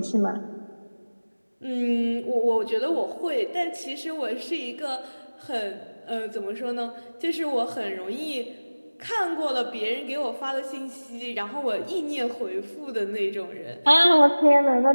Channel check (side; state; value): both; inverted; correlation -1.00